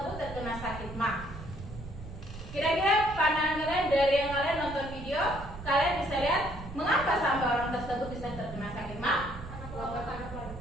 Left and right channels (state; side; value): noise; right; rumble, 12 dB below the sound